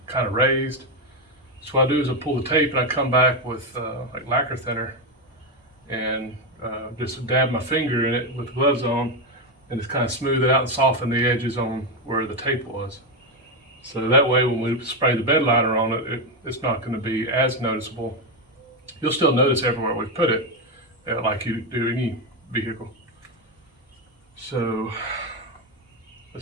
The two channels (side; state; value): both; normal; correlation 0.08